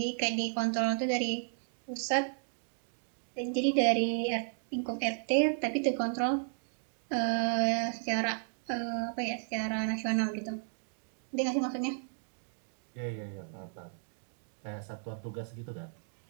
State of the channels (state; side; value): silent; left; digital silence